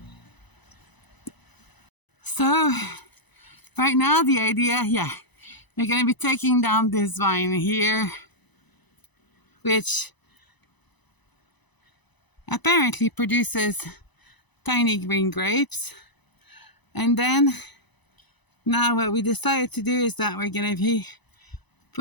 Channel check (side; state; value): right; late; 1.0 ms